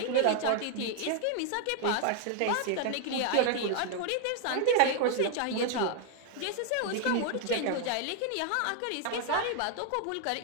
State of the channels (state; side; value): different; both; correlation 0.00